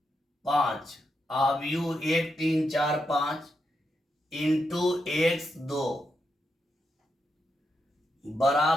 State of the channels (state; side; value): normal; both; correlation 0.84